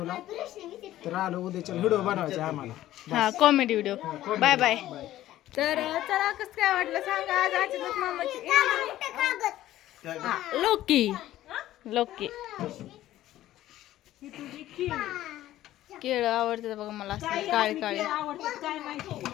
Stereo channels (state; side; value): quieter; right; 14.1 dB